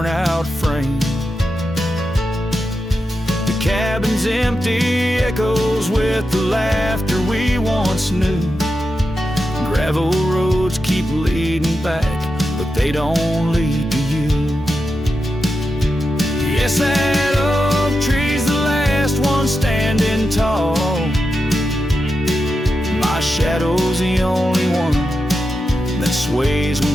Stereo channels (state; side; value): normal; both; correlation 0.89